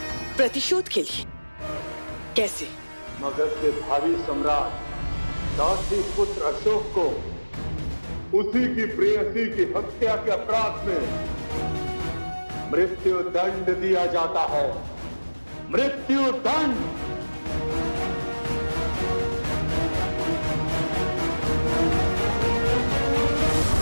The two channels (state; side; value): inverted; both; correlation -1.00